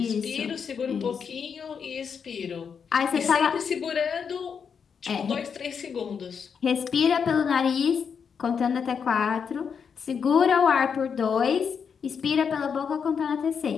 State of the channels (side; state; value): right; quieter; 6.6 dB